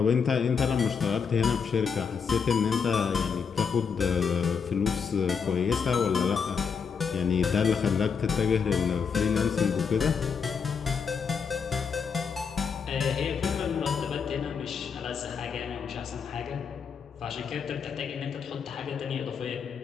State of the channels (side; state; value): right; quieter; 6.2 dB